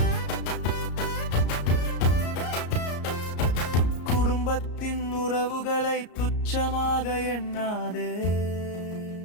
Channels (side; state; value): right; late; 34 ms